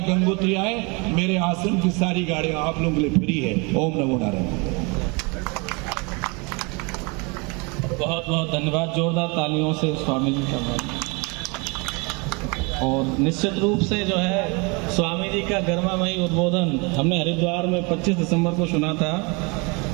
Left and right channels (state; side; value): quieter; left; 29.8 dB